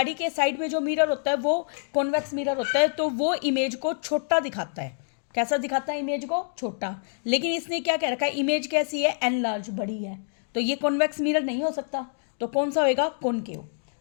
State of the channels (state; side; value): silent; right; digital silence